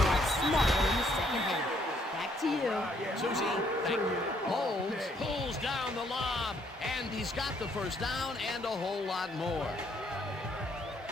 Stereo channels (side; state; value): both; normal; correlation 0.68